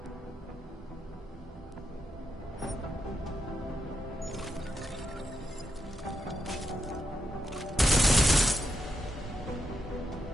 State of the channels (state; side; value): normal; both; correlation 0.82